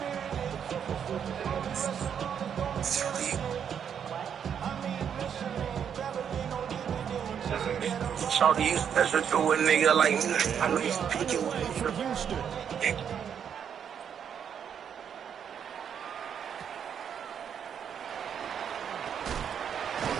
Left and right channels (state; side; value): quieter; left; 8.1 dB